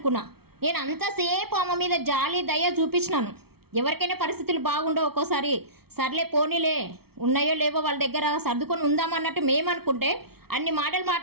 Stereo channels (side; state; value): left; late; 0.95 ms